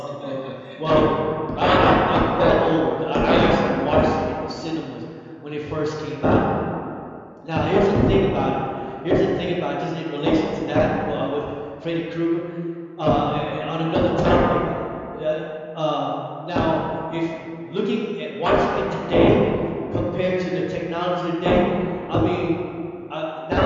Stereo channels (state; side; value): identical; both; correlation 1.00